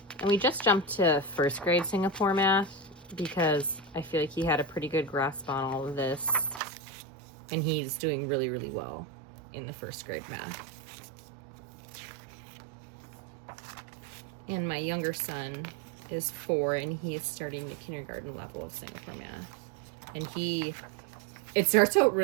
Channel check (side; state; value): left; drops out; at 6.6 s